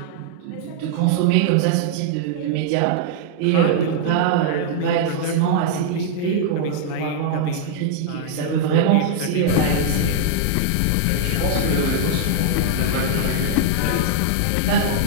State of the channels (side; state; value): both; different; correlation -0.01